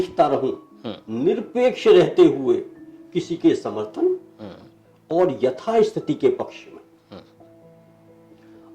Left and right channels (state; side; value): identical; both; correlation 1.00